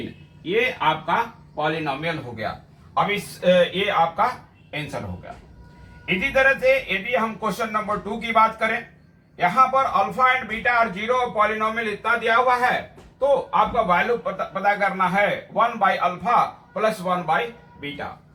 ये आपका पॉलिनोमियल हो गया। अब ये आपका आंसर हो गया। इसी तरह से यदि हम क्वेश्चन नंबर 2 की बात करें, यहां पर अल्फा एंड बीटा और जीरो पॉलिनोमियल इतना दिया हुआ है तो आपका वैल्यू पता करना है 1 by alpha plus 1 by beta.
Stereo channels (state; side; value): identical; both; correlation 1.00